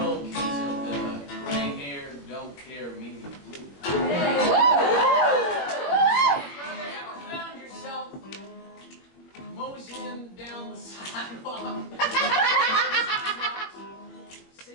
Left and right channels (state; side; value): late; right; 21 ms